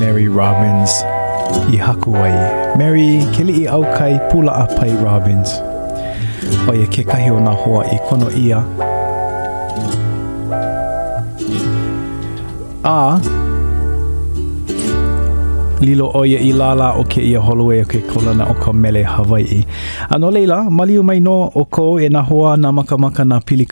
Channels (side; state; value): both; inverted; correlation -1.00